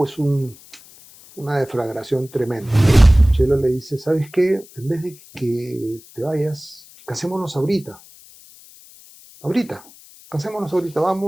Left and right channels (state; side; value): noise; left; hiss, 23 dB below the sound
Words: una deflagración tremenda. Chelo le dice, ¿sabes qué? En vez de que te vayas, casémonos ahorita. Ahorita, casémonos ahorita,